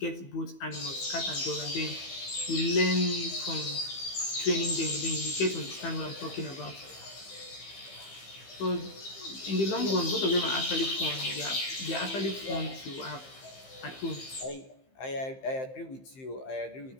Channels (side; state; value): right; late; 15 ms